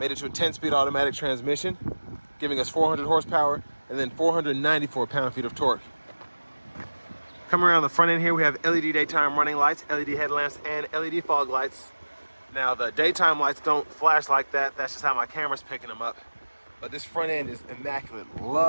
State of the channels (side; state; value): both; inverted; correlation -1.00